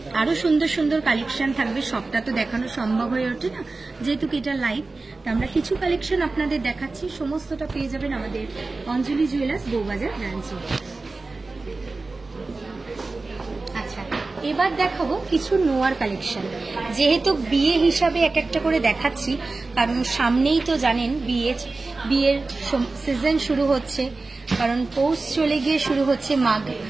আরো সুন্দর সুন্দর কালেকশন থাকবে, সবটা তো দেখানো সম্ভব হয়ে ওঠে না, যেহেতু এটা লাইভ। তা আমরা কিছু কালেকশন আপনাদের দেখাচ্ছি, সমস্তটা পেয়ে যাবেন আমাদের অঞ্জলি জুয়েলার্স বউবাজার ব্রাঞ্চে। আচ্ছা, এবার দেখাবো কিছু নোয়ার কালেকশন। যেহেতু বিয়ে হিসাবে এক একটা করে দেখাচ্ছি, কারণ সামনেই তো জানেন বিয়ের সিজন শুরু হচ্ছে, কারণ পৌষ চলে গিয়ে শুরু হচ্ছে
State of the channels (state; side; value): quieter; left; 3.6 dB